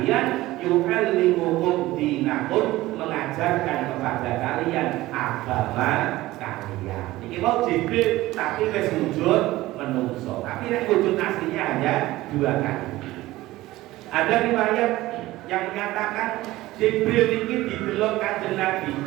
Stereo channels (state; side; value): quieter; left; 17.5 dB